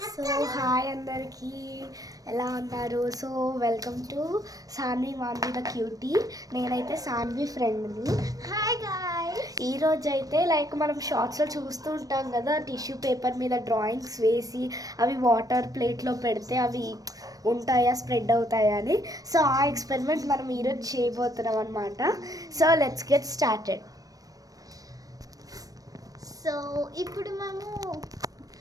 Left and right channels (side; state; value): left; late; 0.18 ms